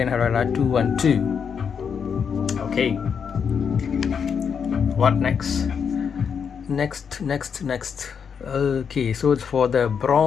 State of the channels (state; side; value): quieter; right; 6.8 dB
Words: Herrera 212. Okay, what next? Next. Okay, so it's for the